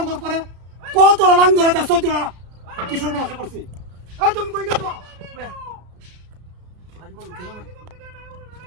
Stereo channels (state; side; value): late; left; 33 ms